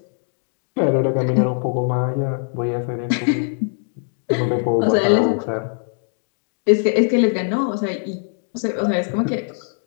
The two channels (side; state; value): right; silent; digital silence